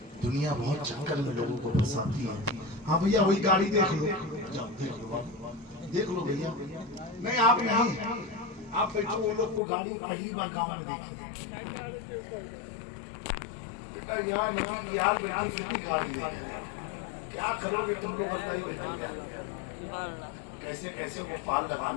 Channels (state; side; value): drops out; right; at 9.6 s